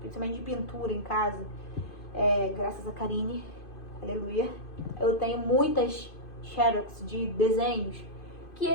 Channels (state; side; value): late; right; 2.5 ms